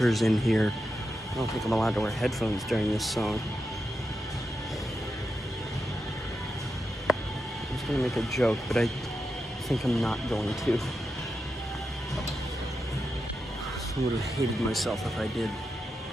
in here. I don't think I'm allowed to wear headphones during this song. I was gonna make a joke, but I think I'm not going to. I would have hated myself if I did.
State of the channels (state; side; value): normal; both; correlation 0.87